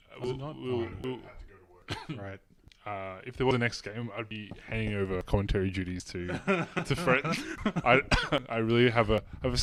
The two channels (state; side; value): identical; both; correlation 1.00